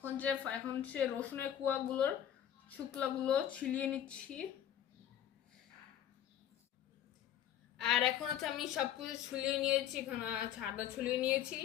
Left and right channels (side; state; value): right; quieter; 10.5 dB